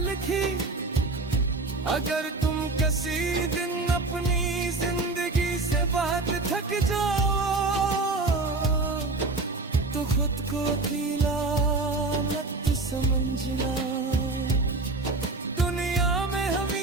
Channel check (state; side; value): quieter; left; 3.4 dB